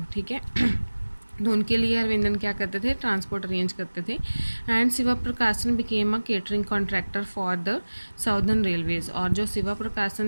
ठीक है तो उनके लिए अरविंदन क्या करते थे, ट्रांसपोर्ट अरेंज करते थे। एंड शिवा प्रकाशन became a catering contractor for the southern railways. और जो शिवा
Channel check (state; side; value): inverted; both; correlation -1.00